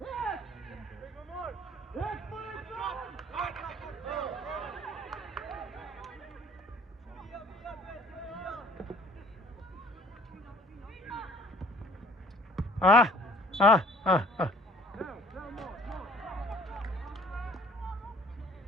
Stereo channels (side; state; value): both; normal; correlation 0.55